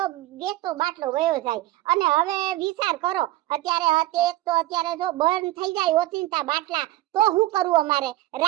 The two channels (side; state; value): left; quieter; 16.4 dB